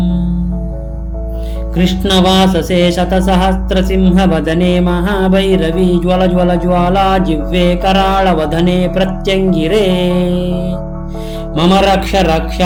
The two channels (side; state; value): both; identical; correlation 1.00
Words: कृष्णवाससे शतसहस्रसिंहवदने महाभैरवी ज्वल ज्वल ज्वाला जिह्वे कराळवदने प्रत्यङ्गिरे मम रक्ष